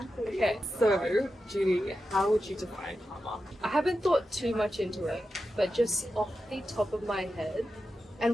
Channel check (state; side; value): normal; both; correlation 0.90